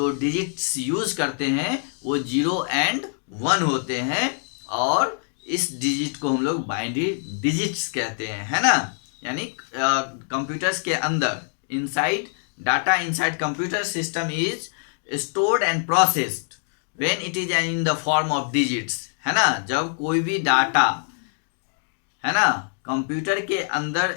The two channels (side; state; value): right; silent; digital silence